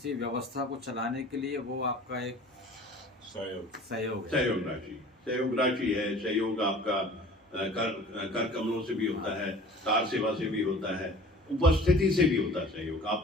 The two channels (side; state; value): both; normal; correlation 0.45